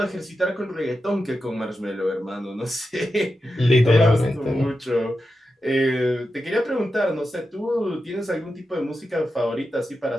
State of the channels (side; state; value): both; normal; correlation 0.89